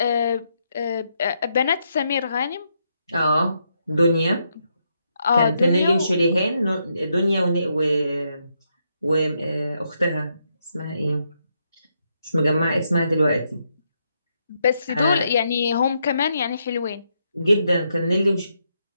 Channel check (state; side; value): inverted; both; correlation -0.79